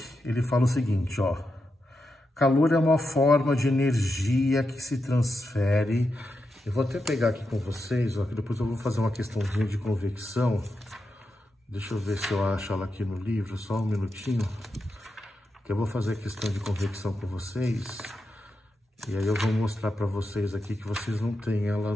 ele fala o seguinte, ó. Calor é uma forma de energia que se transfere. Eu vou até pegar aqui com vocês, ó, que depois eu vou fazer uma questãozinha de convecção. Deixa eu ver se eu acho ela aqui no livro, só um minutinho. Que eu vou fazer a questão de convecção com vocês. E aí eu vou mostrar para vocês aqui que vocês não têm ela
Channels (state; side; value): normal; both; correlation 0.87